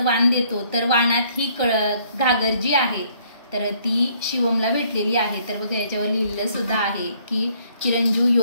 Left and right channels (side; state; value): both; inverted; correlation -0.64